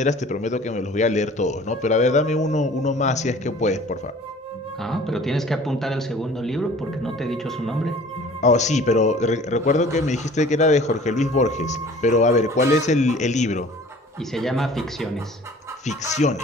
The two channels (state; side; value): normal; both; correlation 0.48